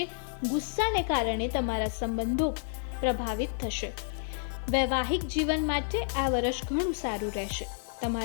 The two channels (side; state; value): right; silent; digital silence